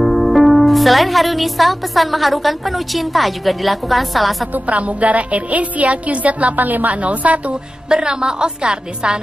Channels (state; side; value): normal; both; correlation 0.95